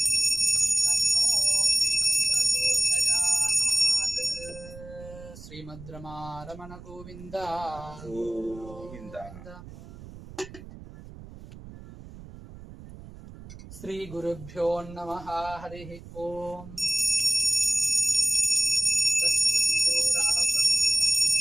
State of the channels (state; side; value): noise; right; rumble, 16 dB below the sound